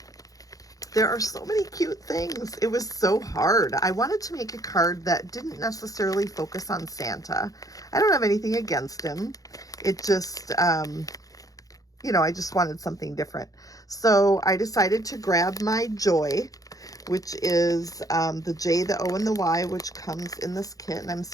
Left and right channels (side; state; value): right; late; 0.17 ms